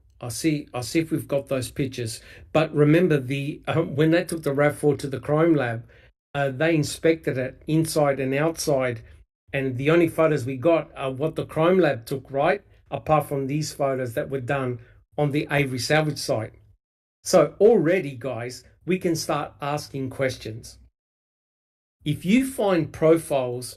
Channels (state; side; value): identical; both; correlation 1.00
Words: I'll see if we've got those pictures. But remember, when they took the RAV4 to the crime lab, they inspected it inside and outside, and the only photos we got are what the crime lab took, right? Apart from these photos that were done on the Avery salvage site. So already, guys, we can start asking questions. If you find